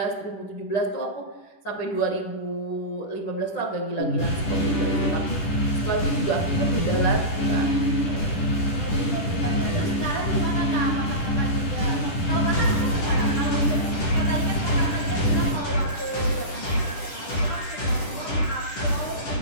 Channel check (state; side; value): late; right; 10 ms